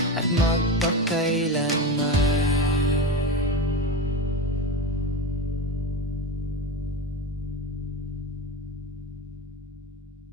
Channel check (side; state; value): both; normal; correlation 0.22